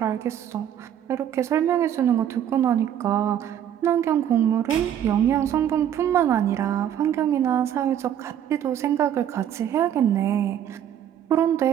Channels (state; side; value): quieter; left; 10.0 dB